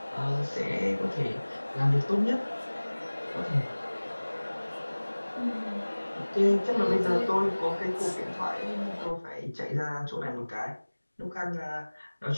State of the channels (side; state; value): both; inverted; correlation -1.00